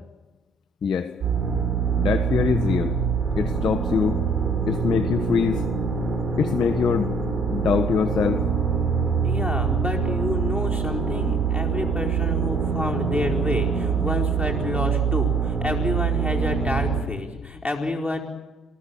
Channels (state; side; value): normal; both; correlation 0.59